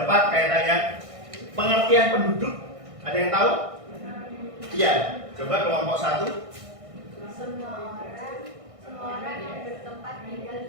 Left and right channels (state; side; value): late; left; 1.6 ms